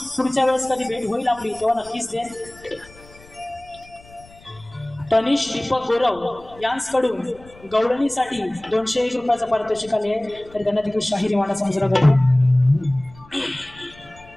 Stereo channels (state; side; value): noise; left; rumble, 24 dB below the sound